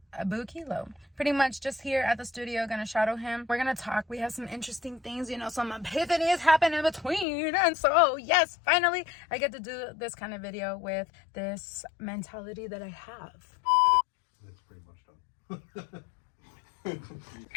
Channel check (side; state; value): right; drops out; at 7.2 s